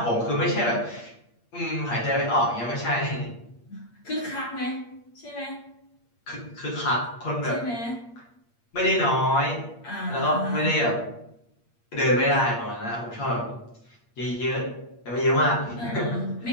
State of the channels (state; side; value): late; right; 8.5 ms